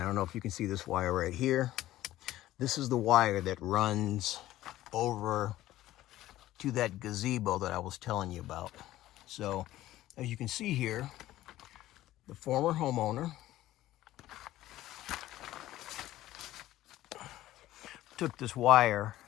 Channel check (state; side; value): quieter; right; 14.9 dB